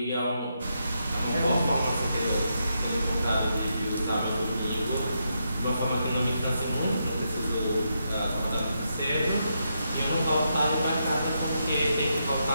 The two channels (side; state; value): both; inverted; correlation -0.82